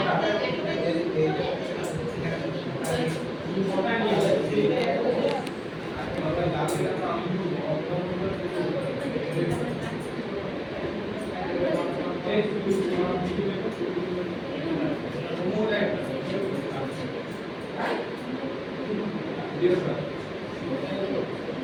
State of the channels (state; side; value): identical; both; correlation 1.00